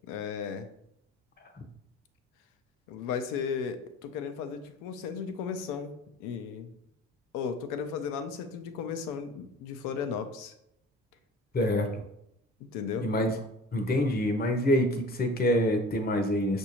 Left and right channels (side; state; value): both; normal; correlation 0.43